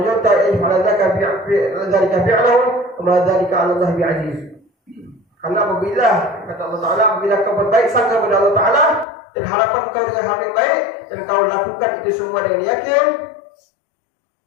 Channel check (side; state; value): right; drops out; at 9.1 s